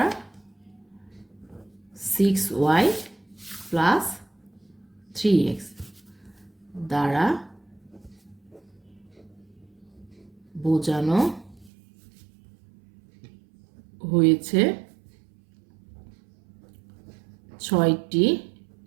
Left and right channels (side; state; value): left; drops out; at 11.7 s